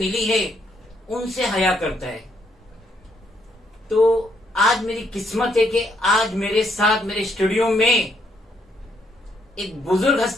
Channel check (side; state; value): both; normal; correlation 0.73